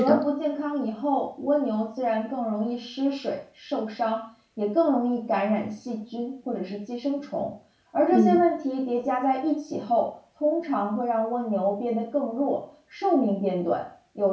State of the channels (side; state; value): both; identical; correlation 1.00